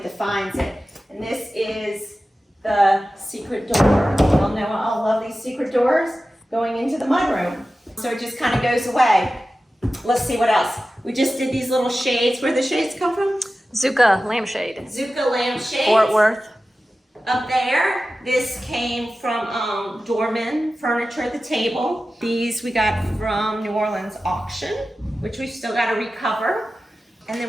it. And this is the secret door. You all know I love these secret doors going into the mudroom. So it just kind of goes away. Let's see what else. We just did these little shades. Where the shades come from? Zucca lampshade. Zucca lampshades. Fort Worth. Up there, this came from Dorman Furniture, the table. These we got from New Orleans auction, which we've still got to recover. And then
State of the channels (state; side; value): normal; both; correlation 0.94